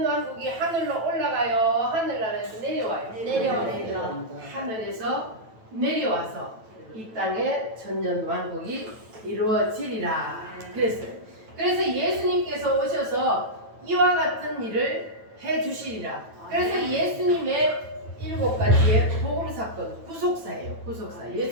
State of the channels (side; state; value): left; late; 9.1 ms